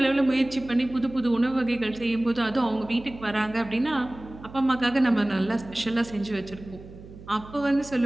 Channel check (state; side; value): noise; right; hum, 17 dB below the sound